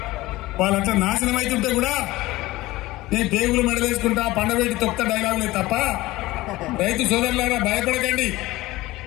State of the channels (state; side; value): quieter; right; 18.7 dB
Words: వాళ్ళంతా నాశనం అవుతుంటే కూడా నేను పేగులు మెడలేసుకుంటా పండబెట్టి తొక్త డైలాగులే తప్ప రైతు సోదరులారా భయపడకండి.